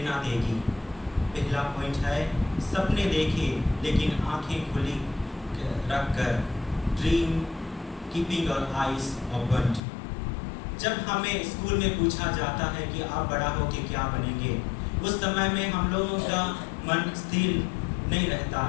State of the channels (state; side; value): drops out; right; at 9.8 s